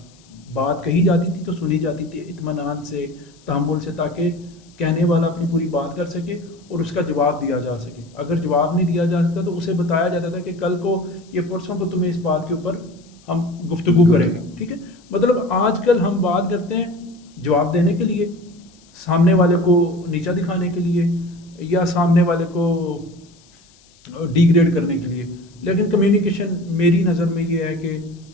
بات کہی جاتی تھی تو سنی جاتی تھی اطمینان سے، تحمل سے، تاکہ کہنے والا اپنی پوری بات کر سکے اور اس کا جواب دیا جا سکے. اگر جواب نہیں دیا جا سکتا تو اسے بتایا جاتا تھا کہ کل کو یہ پرسوں کو تمہیں اس بات کے اوپر ہم گفتگو کریں گے. ٹھیک ہے. مطلب آج کل ہم بات کرتے ہیں جواب دینے کے لیے، سامنے والے کو نیچا دکھانے کے لیے، یا سامنے والے کو ڈی گریڈ کرنے کے لیے. لیکن کمیونیکیشن میری نظر میں یہ ہے کہ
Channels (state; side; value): noise; left; hiss, 29 dB below the sound